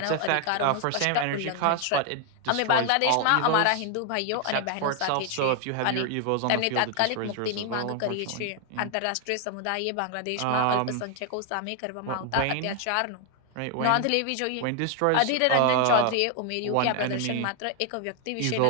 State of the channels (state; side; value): different; both; correlation 0.00